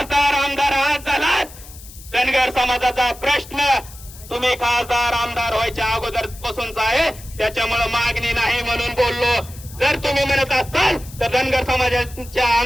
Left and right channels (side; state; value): left; noise; hiss, 18 dB below the sound